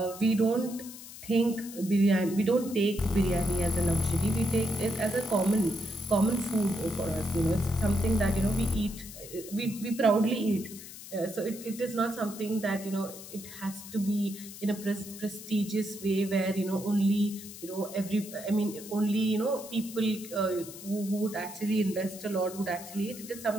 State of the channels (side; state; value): left; noise; hiss, 14 dB below the sound